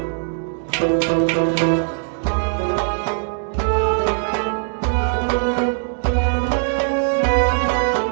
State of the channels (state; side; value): silent; left; digital silence